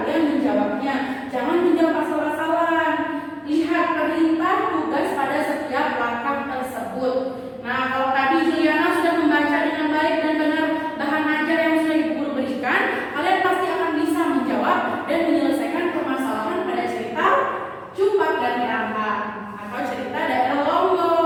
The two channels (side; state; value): both; identical; correlation 1.00